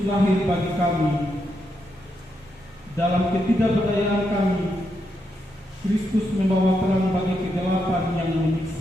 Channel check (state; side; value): normal; both; correlation 0.82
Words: lahir bagi kami. Dalam ketidakberdayaan kami, Kristus membawa terang bagi kegelapan yang